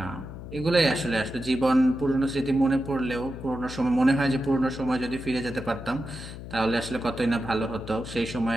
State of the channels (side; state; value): left; noise; hum, 11 dB below the sound